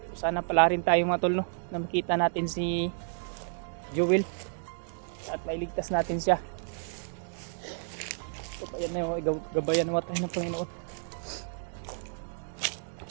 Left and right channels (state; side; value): silent; left; digital silence